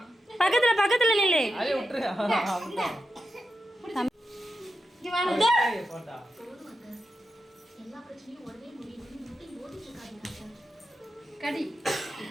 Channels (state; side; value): normal; both; correlation 0.89